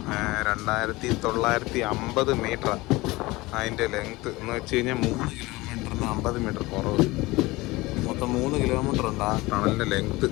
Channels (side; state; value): right; quieter; 21.1 dB